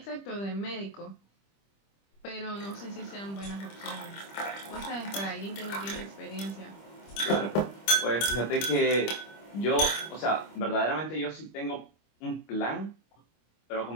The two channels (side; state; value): right; late; 25 ms